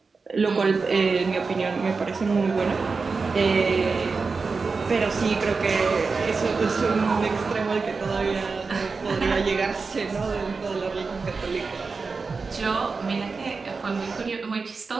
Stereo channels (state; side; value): quieter; left; 4.5 dB